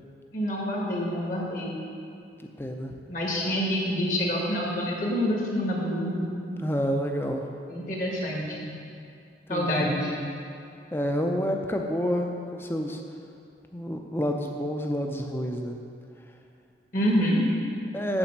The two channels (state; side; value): normal; both; correlation 0.66